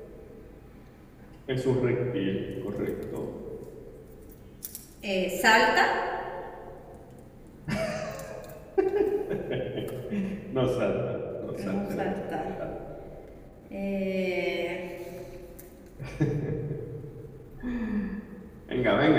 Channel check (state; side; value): identical; both; correlation 1.00